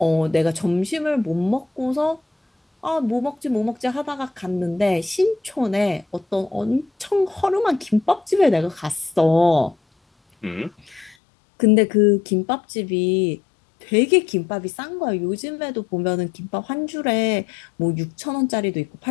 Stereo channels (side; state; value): right; drops out; at 11.2 s